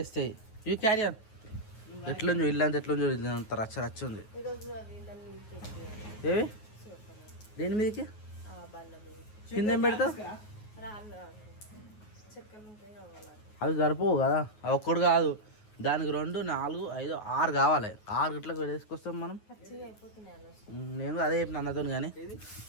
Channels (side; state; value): right; late; 9.4 ms